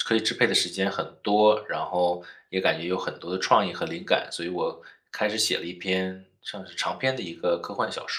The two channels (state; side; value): identical; both; correlation 1.00